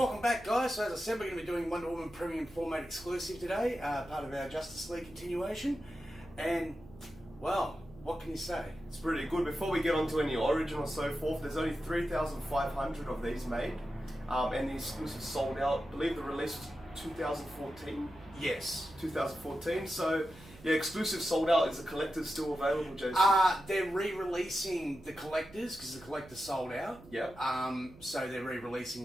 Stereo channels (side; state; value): right; noise; hum, 21 dB below the sound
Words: back guys, so as I said we're going to be doing Wonder Woman Premium Format Exclusive today, part of our Justice League continuation, and well, what can you say? It's pretty good. Before we get on to any origin or so forth, there's only 3,500 of these made, and the exclusive sold out. I believe the release was 2014. Yes. 2014, so yeah, exclusive sold out. Is the collector still available, Jason? They're re-releasing the collectors because the collector sold out. Yep. So they're re-releasing